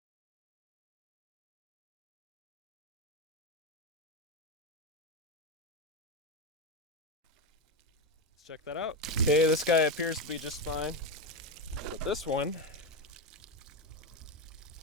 let's check that out. Okay, this guy appears to be just fine, but this one,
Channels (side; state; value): both; normal; correlation 0.12